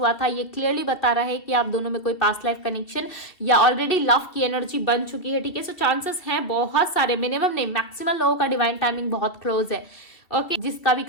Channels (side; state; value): right; late; 2.7 ms